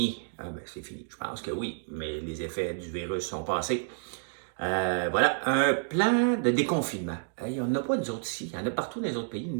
C'est fini. Je pense que oui, mais les effets du virus sont passés. Voilà, un plan de déconfinement. Il n'y en a pas nous autres ici. Il y en a partout dans les autres pays.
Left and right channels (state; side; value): silent; left; digital silence